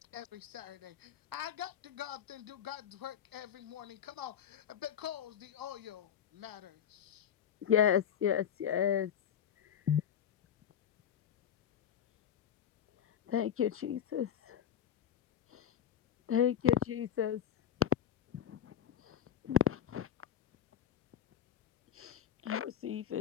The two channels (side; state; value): right; quieter; 9.2 dB